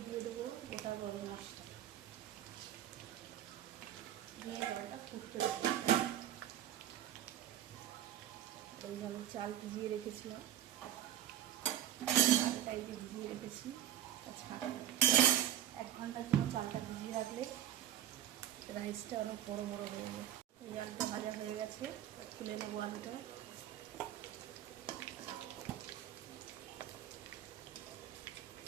দিয়ে দেবো গোটা গরম মশলা, দিয়ে জলটা ফুটতে দেবো। এইভাবে চাল ভিজিয়ে রেখেছিলাম, চালটাই ভিজিয়ে রেখেছি। আচ্ছা, 1 ঘন্টার জন্য চালটা ভিজিয়ে রাখলে রাইসটা অনেক বড়ো বড়ো হয়ে যাবে। এই আলুটা ভাজা হয়ে গেছে, তুলে নেবো আলুটা।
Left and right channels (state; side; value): quieter; left; 11.5 dB